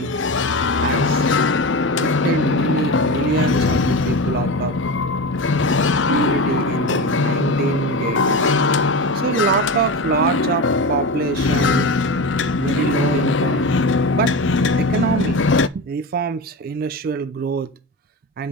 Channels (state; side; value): normal; both; correlation 0.24